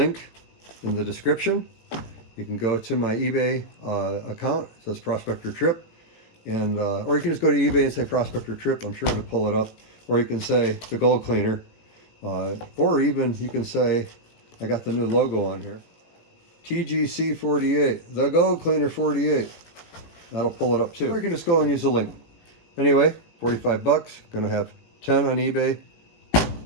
in the description. You can go to my eBay account. It says Prospector Tripp. And, or you can just go to eBay and say Prospector Tripp. I'm sure it'll pull it up. Or you can say the gold cleaner. Or even you can say, I got the new logo on here. TGC48, the gold cleaner 48. That'll pull it up too. Or you can just go and use the link. Anyway, 45 bucks. Gonna have 10 on eBay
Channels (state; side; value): late; right; 18 ms